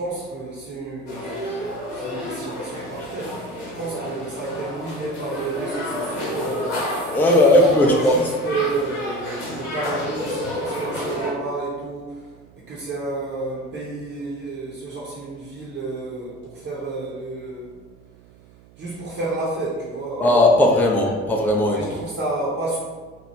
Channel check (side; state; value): right; noise; hum, 25 dB below the sound